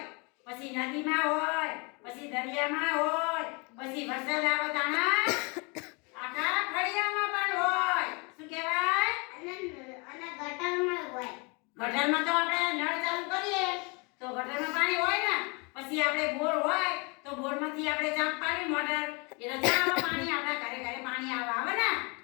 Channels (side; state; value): right; quieter; 30.8 dB